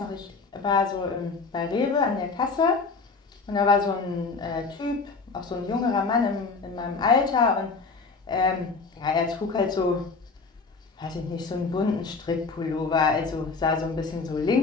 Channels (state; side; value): quieter; right; 4.4 dB